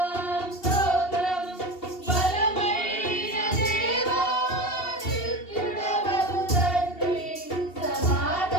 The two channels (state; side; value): late; right; 2.7 ms